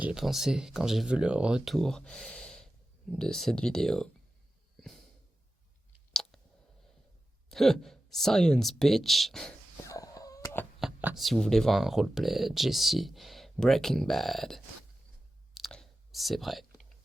pensé quand j'ai vu le retour de cette vidéo? Science bitch. Si vous voulez voir un roleplay Jesse Breaking Bad, c'est vrai.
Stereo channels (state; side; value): normal; both; correlation 0.94